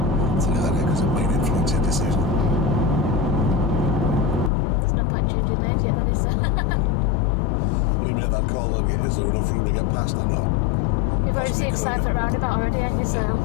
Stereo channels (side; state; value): right; drops out; at 4.5 s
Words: So do that here because it might influence your decision. There's no point changing names yet, then, is there? When you made that call, then is there enough room to get past or not? You've already seen Cypher roundabout already, haven't you? So,